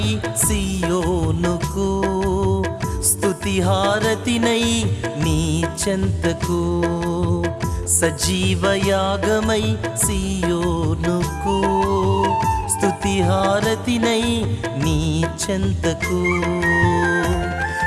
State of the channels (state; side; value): identical; both; correlation 1.00